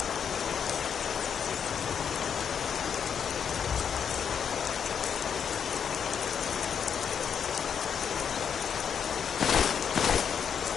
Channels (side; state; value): right; quieter; 7.5 dB